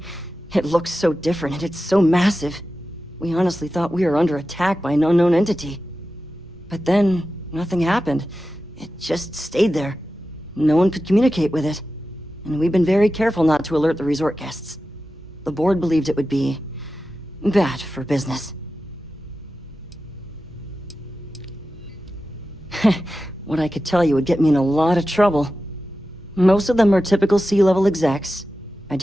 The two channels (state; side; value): normal; both; correlation 0.93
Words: It looks so different and it's so massive. We honestly thought we were under attack by an unknown entity. But then, nothing happened. It just stayed there. No one could communicate with it. And we've been very careful not to alert the resort guests. The board believed it would be bad for business. What I could tell you would get me in a lot of trouble. Most of them are typical C-level execs. I